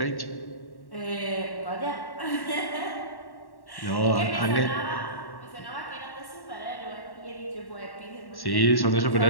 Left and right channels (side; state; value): right; late; 1.1 ms